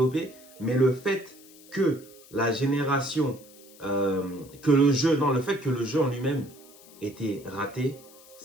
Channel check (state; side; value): noise; left; hiss, 23 dB below the sound